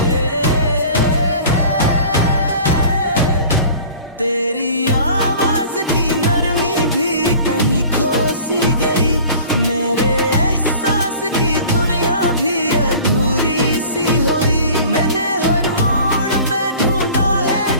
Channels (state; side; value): inverted; both; correlation -0.44